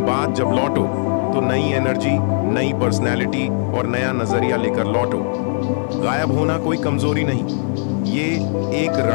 बाद जब लौटो तो नई एनर्जी, नई पर्सनैलिटी और नया नजरिया लेकर लौटो। गायब होना कोई कमजोरी नहीं, ये एक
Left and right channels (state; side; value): silent; right; 58 dB below the other